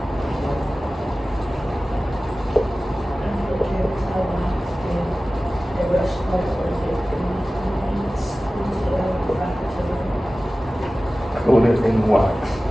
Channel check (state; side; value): normal; both; correlation 0.96